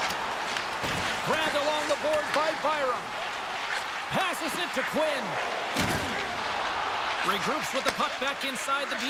Grabbed along the board by Byram. Passes it to Quinn. Regroups with the puck back inside the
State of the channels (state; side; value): identical; both; correlation 1.00